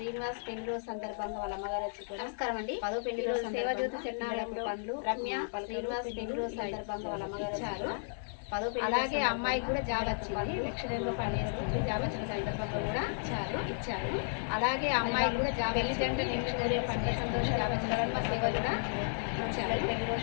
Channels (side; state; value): right; silent; 55 dB below the other